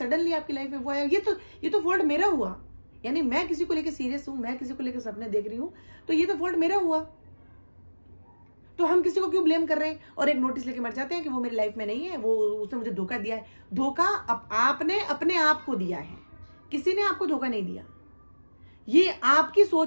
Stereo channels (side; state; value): both; inverted; correlation -1.00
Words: आपकी लाइफ में वो आया। ये तो फॉल्ट मेरा हुआ, यानी मैं किसी को लेकर सीरियस हूं, मैं किसी को लेकर सपने देख रही हूं, तो ये तो फॉल्ट मेरा हुआ। तो हम किसी को क्यों ब्लेम कर रहे हैं और एक नोटिस लेके मर जाते हैं कि वो मेरी लाइफ में नहीं है, वो उसने मुझे धोखा दिया है। धोखा आपने अपने आप को दिया है, किसी ने आपको धोखा नहीं दिया। ये आपकी